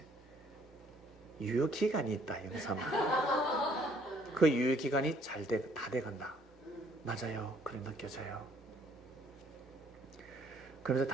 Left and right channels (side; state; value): both; normal; correlation 0.63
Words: 유효기간이 있다. 영삼아. 그 유효기간이 다 돼간다. 맞아요. 그래 느껴져요. 그래서